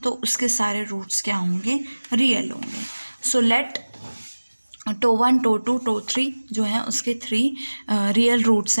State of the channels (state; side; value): inverted; both; correlation -1.00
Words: तो उसके सारे roots क्या होंगे, real होंगे। So let tau 1 tau 2 tau 3 जो है उसके 3 real roots